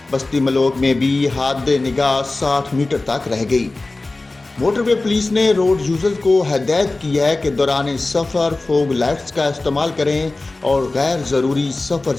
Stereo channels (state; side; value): quieter; right; 3.1 dB